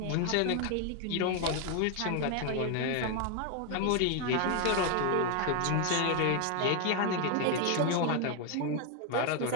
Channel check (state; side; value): different; both; correlation 0.01